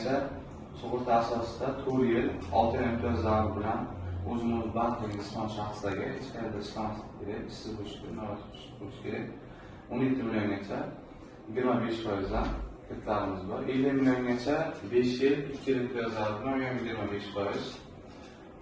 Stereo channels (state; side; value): identical; both; correlation 1.00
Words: sug'urta asosida 4 yil 6 oy imtiyozlari bilan o'zimiz bandlik ismon shaxslarga hech qayerda ishlamaslik kerak, ishsiz bo'lish kerak. 17 milliongacha 25% dan kreditlarimiz bor. 50 milliongacha 5 yil 2 yil imtiyozlari bilan 25%.